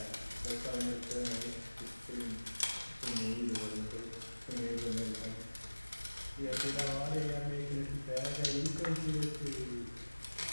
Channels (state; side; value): inverted; both; correlation -1.00